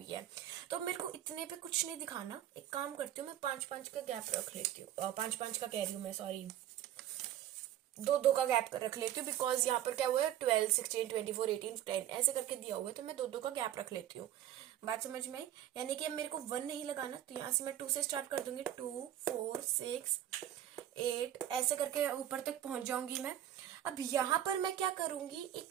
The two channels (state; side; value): quieter; left; 11.7 dB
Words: है, तो मेरे को इतने पे कुछ नहीं दिखाना, एक काम करती हूँ मैं 5-5 का गैप रख लेती हूँ, 5-5 का कह रही हूँ मैं, सॉरी 2-2 का गैप रख लेती हूँ, बिकॉज यहाँ पर क्या हुआ है 12, 16, 24, 18, 10 ऐसे करके दिया हुआ है, तो मैं 2-2 का गैप रख लेती हूँ। बात समझ में आई, यानी कि अब मेरे को 1 नहीं लगाना, तो यहाँ से मैं 2 से स्टार्ट कर दूंगी, 2, 4, 6, 8 ऐसे करके ऊपर तक पहुंच जाऊंगी मैं। अब यहाँ पर मैं क्या करूंगी,